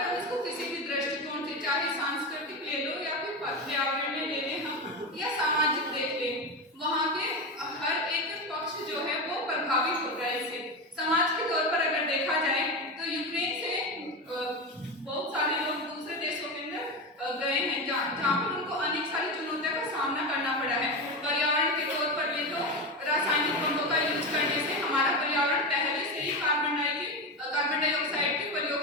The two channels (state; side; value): normal; both; correlation 0.19